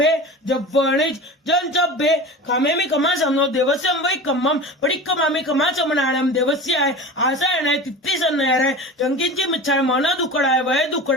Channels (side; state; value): both; normal; correlation 0.32